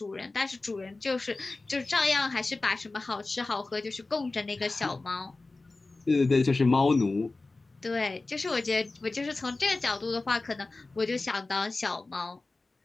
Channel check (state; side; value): quieter; right; 3.4 dB